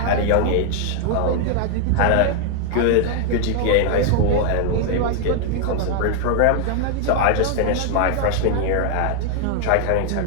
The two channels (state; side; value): different; both; correlation 0.00